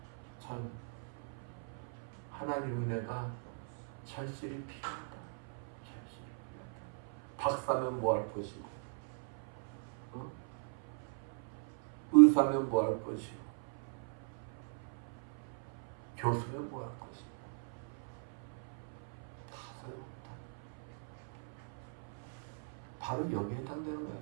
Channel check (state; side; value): silent; left; 51 dB below the other